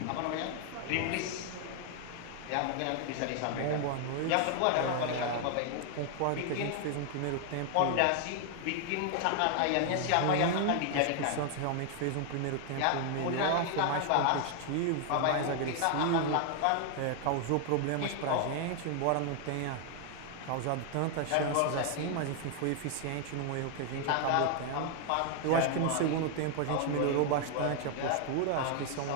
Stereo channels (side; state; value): both; different; correlation 0.00